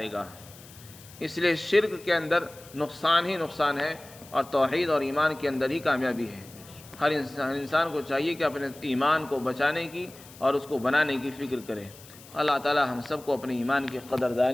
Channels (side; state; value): left; noise; hiss, 20 dB below the sound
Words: گا۔ اس لیے شرک کے اندر نقصان ہی نقصان ہے اور توحید اور ایمان کے اندر ہی کامیابی ہے۔ ہر انسان کو چاہیے کہ اپنے ایمان کو بچانے کی اور اس کو بنانے کی فکر کرے۔ اللہ تعالی ہم سب کو اپنے ایمان کی